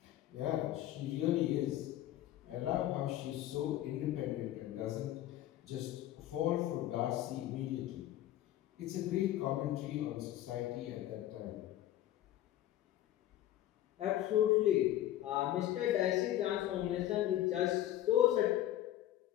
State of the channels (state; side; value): quieter; right; 13.4 dB